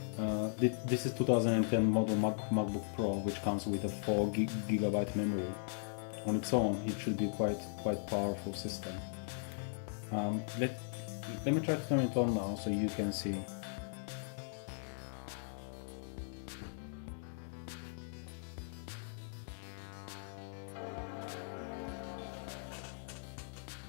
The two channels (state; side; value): silent; right; digital silence